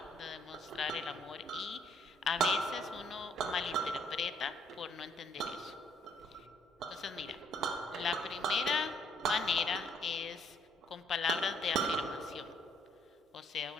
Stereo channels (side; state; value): both; normal; correlation 0.66